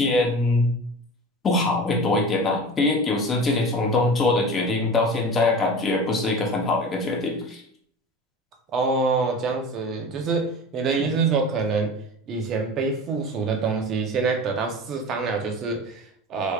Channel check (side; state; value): both; normal; correlation 0.34